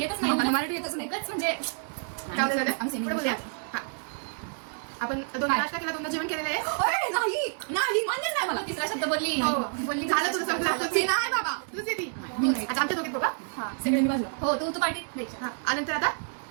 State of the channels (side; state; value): left; silent; 59 dB below the other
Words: येतच नाही. मराठी येतच नाही. म्हणजे पुढे बोलूया. आपण दोन नाश्ता केला दोनदा जेवण केलेलं आहे. नाही मान्यच नाही मला. तिसरा शब्द बोलली झालं तुझं संपलं. नाही बाबा तुझं ती आता आमच्या दोघीत बघा. सगळ्यांनी बाजूला. हो तू पार्टी द्यायची. आणि नंतर आता